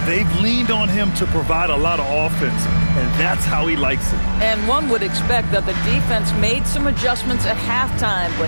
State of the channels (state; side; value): inverted; both; correlation -1.00